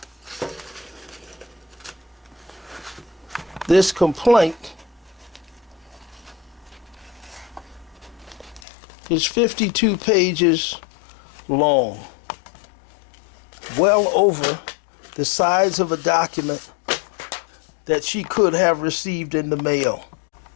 this complaint is 52 pages long, well over the size of a document that she could have received in the mail.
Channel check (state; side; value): drops out; right; at 8.6 s